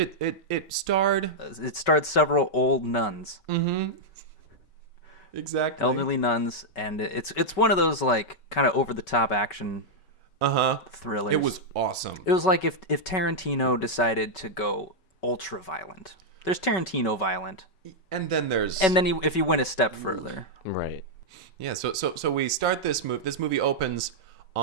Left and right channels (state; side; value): late; right; 5.3 ms